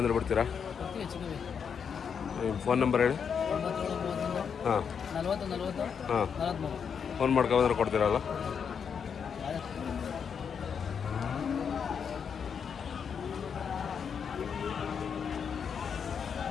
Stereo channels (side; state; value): right; quieter; 6.9 dB